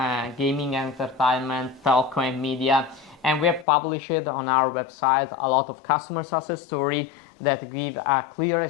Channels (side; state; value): right; drops out; at 3.7 s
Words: gaming, entertainment, telco and media. And we have published on our website a lot of customer success stories that give a clear